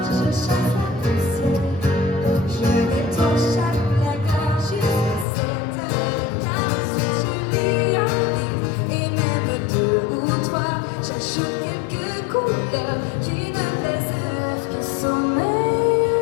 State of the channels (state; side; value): drops out; right; at 5.2 s